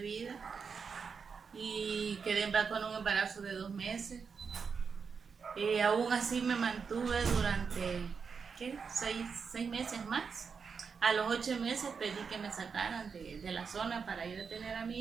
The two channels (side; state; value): left; quieter; 5.7 dB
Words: y quedé con un embarazo de 2 meses. Aún así me mantuve durante, ¿qué? 6 meses más. A los 8 meses pedí que me sacaran de la zona para ir a tener a